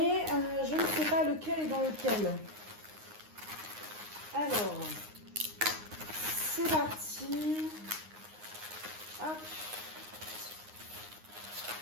je ne sais pas lequel est dans lequel. Alors, c'est parti. Hop.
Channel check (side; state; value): left; late; 9.7 ms